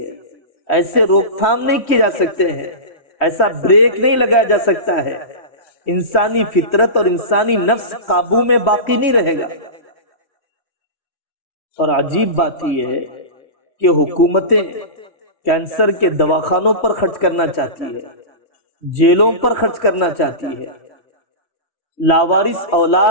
ایسے روک تھام نہیں کی جا سکتے ہیں، ایسا بریک نہیں لگایا جا سکتا ہے۔ انسانی فطرت اور انسانی نفس قابو میں باقی نہیں رہے گا۔ اور عجیب بات یہ ہے کہ حکومتیں کینسر کے دواخانوں پر خرچ کرنا چاہتی ہے، جیلوں پر خرچ کرنا چاہتی ہے، لاوارث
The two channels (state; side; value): late; right; 3.1 ms